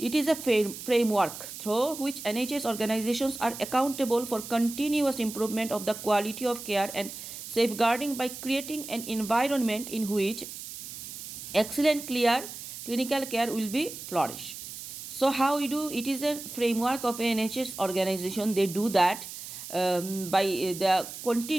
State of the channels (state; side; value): noise; right; hiss, 11 dB below the sound